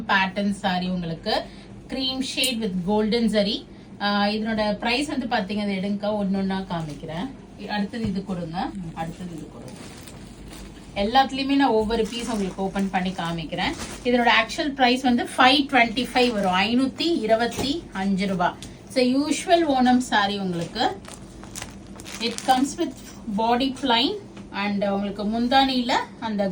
பேட்டர்ன் சாரி உங்களுக்கு cream shade with golden zari. இதனோட ப்ரைஸ் வந்து பார்த்தீங்க, அதை எடுங்க ஒன்னொன்னா காமிக்கிறேன். அடுத்தது இது கொடுங்க, அடுத்தது இது கொடுங்க. எல்லாத்துலயுமே நான் ஒவ்வொரு பீஸ் உங்களுக்கு ஓபன் பண்ணி காமிக்கிறேன். இதனோட ஆக்சுவல் பிரைஸ் வந்து 525 வரும், 525 ரூபாய். ஸோ யூஷுவல் ஓணம் சாரி உங்களுக்கு. It comes with body plain and உங்களுக்கு முந்தானியில அந்த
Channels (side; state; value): both; identical; correlation 1.00